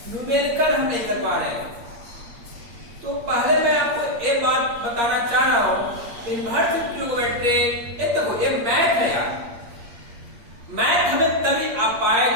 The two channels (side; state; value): left; late; 8.6 ms